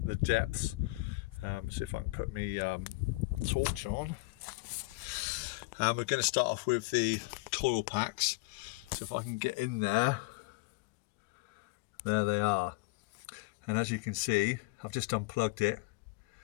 depths, see if I can put my torch on. We're going to start off with the coil packs. So if I can get in there, there they are. And as you can see, I've just unplugged it.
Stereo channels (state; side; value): quieter; right; 25.1 dB